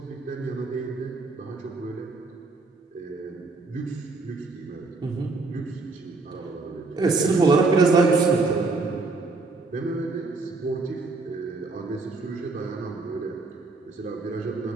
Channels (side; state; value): left; quieter; 3.7 dB